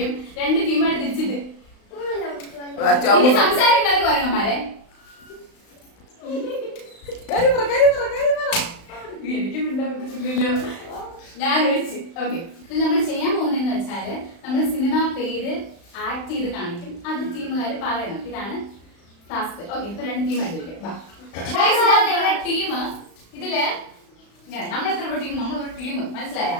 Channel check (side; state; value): right; late; 35 ms